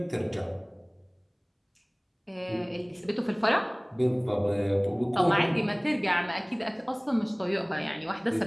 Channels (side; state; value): both; identical; correlation 1.00